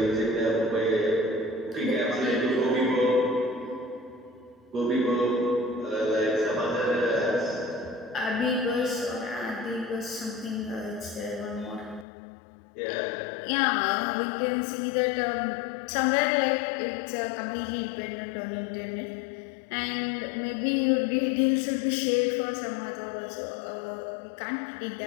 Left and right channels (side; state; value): right; drops out; at 12.1 s